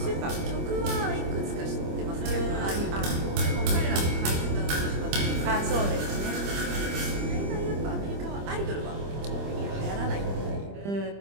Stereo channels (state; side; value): late; left; 25 ms